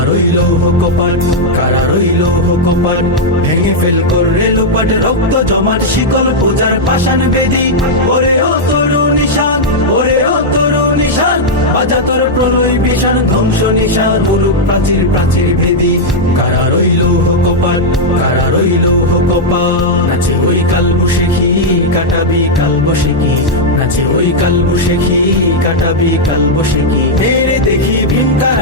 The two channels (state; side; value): normal; both; correlation -0.04